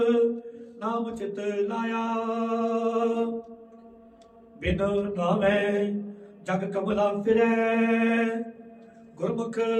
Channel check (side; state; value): both; identical; correlation 1.00